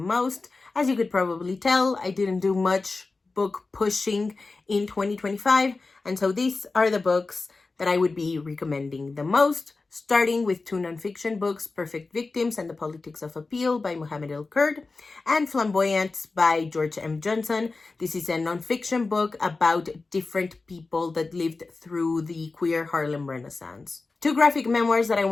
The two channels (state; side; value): quieter; right; 3.7 dB